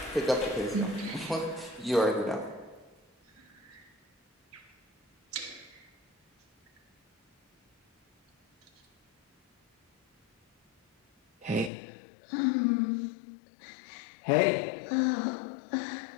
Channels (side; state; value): right; drops out; at 11.7 s